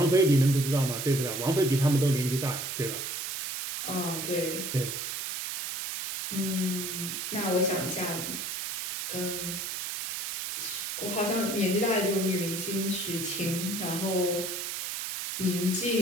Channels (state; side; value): noise; right; hiss, 4 dB below the sound